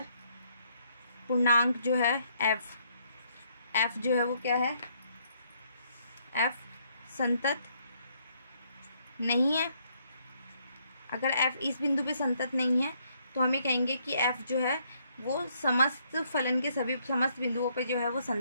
पूर्णांक जो है एफ जो है वो क्या है, एफ संतत नहीं है। अगर एफ इस बिंदु पे संतत नहीं है तो हमें कहेंगे कि एफ जो है वो समस्त फलन के सभी समस्त बिंदुओं पे जो है वो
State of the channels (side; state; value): both; inverted; correlation -0.70